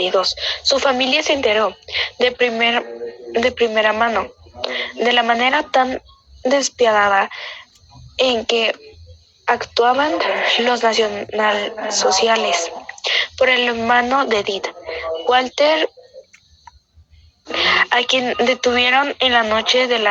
Su familia se enteró de primera mano de la manera tan despiadada en que actuaban los nacionalsociales. Por el hermano de Edith, Walter, a quien detuvieron en la noche de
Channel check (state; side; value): identical; both; correlation 1.00